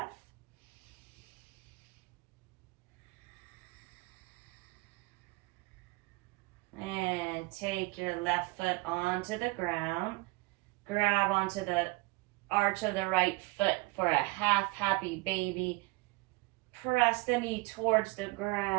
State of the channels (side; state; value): left; quieter; 24.8 dB